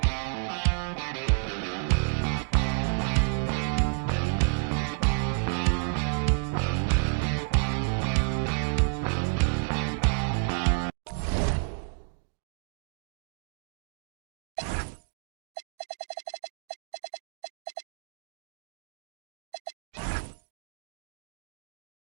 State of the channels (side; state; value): left; silent; 58 dB below the other